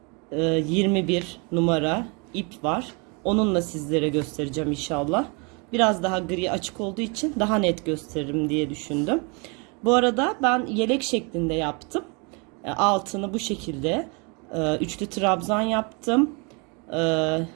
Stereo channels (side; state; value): left; quieter; 32.3 dB